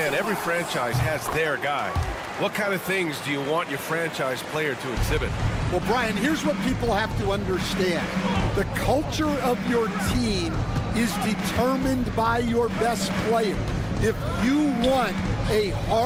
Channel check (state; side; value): identical; both; correlation 1.00